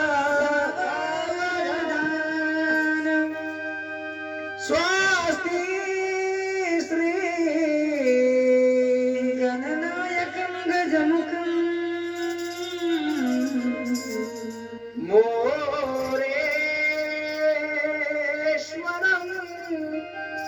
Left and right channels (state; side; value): identical; both; correlation 1.00